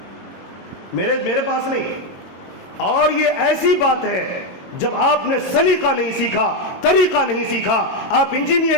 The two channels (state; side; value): late; right; 22 ms